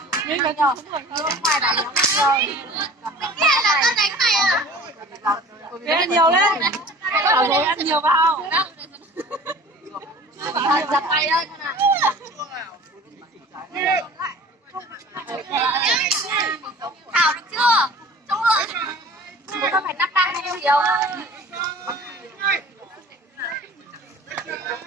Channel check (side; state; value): both; normal; correlation 0.44